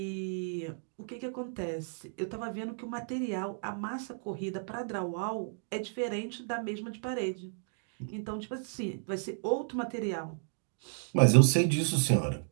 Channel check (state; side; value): silent; left; digital silence